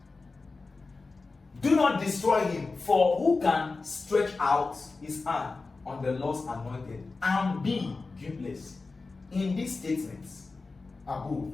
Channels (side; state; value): right; quieter; 3.8 dB